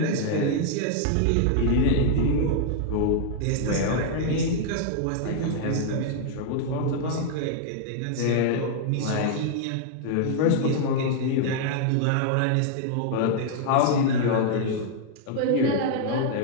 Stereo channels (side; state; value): both; different; correlation -0.01